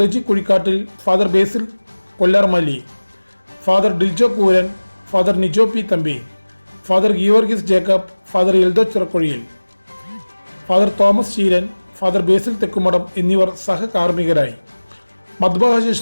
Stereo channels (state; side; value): inverted; both; correlation -1.00